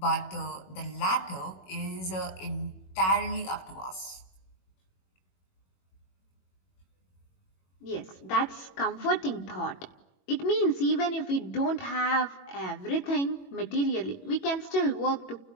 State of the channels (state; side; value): late; right; 21 ms